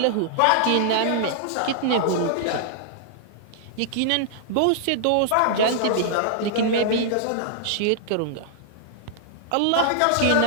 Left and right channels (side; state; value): both; different; correlation -0.01